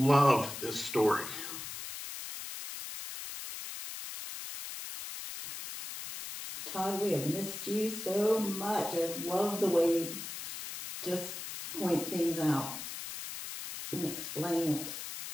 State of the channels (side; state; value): left; noise; hiss, 8 dB below the sound